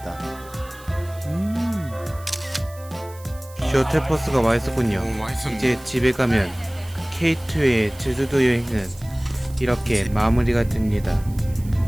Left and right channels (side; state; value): right; noise; hiss, 22 dB below the sound